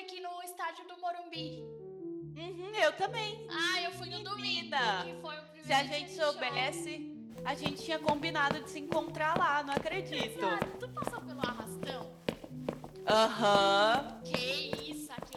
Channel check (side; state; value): both; identical; correlation 1.00